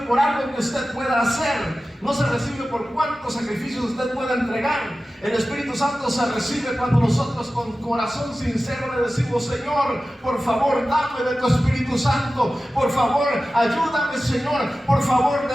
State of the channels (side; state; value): both; normal; correlation 0.95